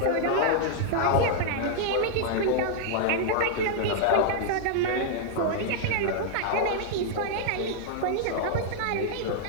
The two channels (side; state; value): both; different; correlation -0.01